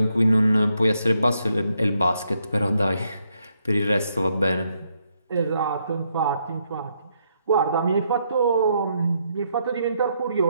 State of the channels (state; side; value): inverted; both; correlation -0.76